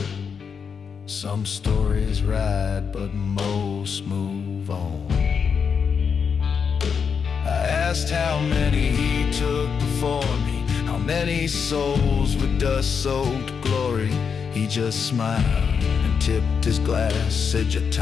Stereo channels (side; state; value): right; quieter; 6.3 dB